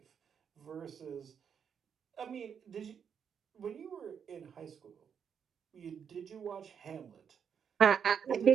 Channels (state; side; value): quieter; left; 7.4 dB